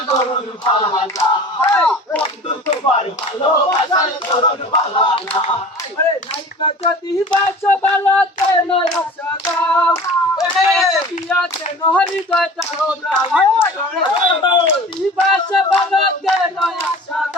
ধরন ভালো বন্ধু তোমার ভালোবাসার ধরন ভালো না আরে নাইকা যদি বাসো ভালো কেন আশা দাও পিয়া কেন হৃদয় তাও যদি বাসো ভালো কেন আশা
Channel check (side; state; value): both; normal; correlation 0.41